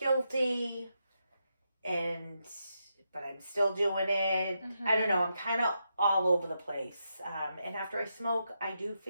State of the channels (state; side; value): inverted; both; correlation -0.84